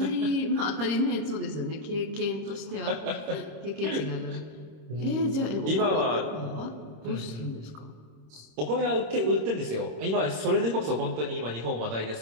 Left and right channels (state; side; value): late; left; 26 ms